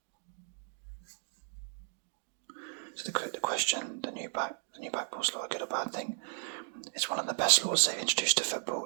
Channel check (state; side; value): silent; left; 55 dB below the other